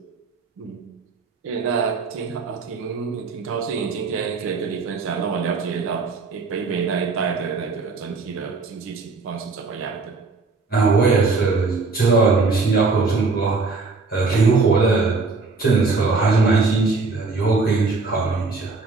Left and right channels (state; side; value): quieter; left; 4.0 dB